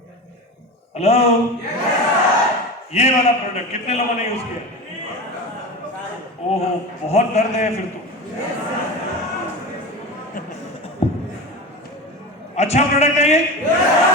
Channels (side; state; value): both; normal; correlation 0.27